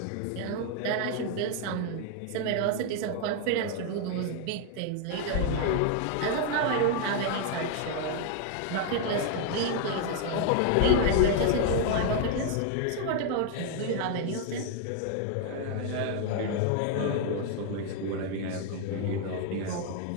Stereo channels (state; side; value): different; both; correlation 0.00